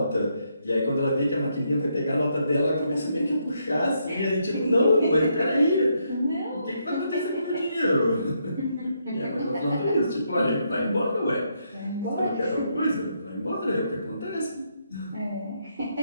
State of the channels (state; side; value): inverted; both; correlation -0.77